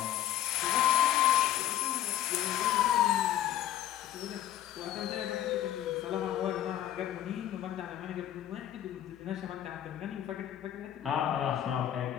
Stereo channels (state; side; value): quieter; right; 12.1 dB